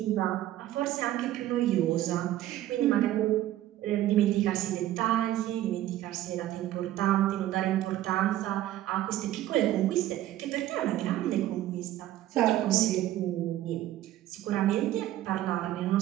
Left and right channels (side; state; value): left; quieter; 13.7 dB